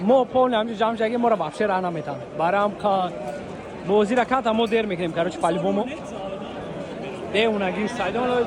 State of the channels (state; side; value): identical; both; correlation 1.00